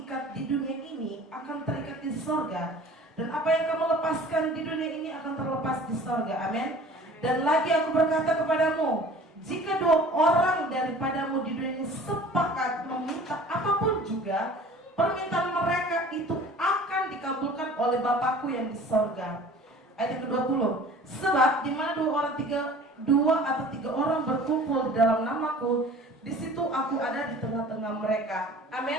ikat di dunia ini akan terikat di sorga, dan apa yang kamu lepaskan di dunia ini akan terlepas di sorga. Amin. Dan lagi aku berkata kepadamu, jika dua orang daripadamu di dunia ini sepakat meminta apapun juga, permintaan mereka itu akan dikabulkan oleh Bapakku yang di sorga. Ayat yang ke-20. Sebab di mana dua atau tiga orang berkumpul di dalam namaku, di situ aku ada di tengah-tengah mereka.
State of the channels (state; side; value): normal; both; correlation 0.46